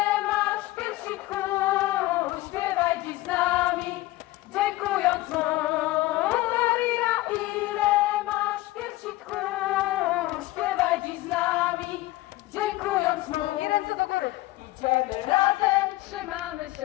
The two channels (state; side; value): quieter; right; 18.2 dB